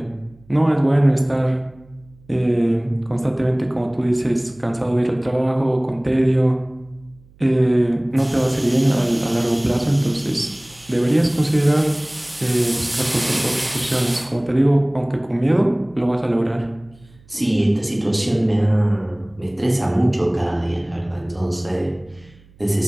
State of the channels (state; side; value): noise; right; hum, 27 dB below the sound